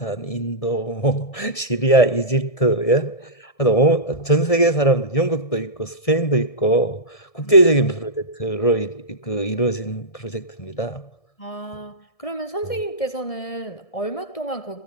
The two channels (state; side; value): late; right; 1.6 ms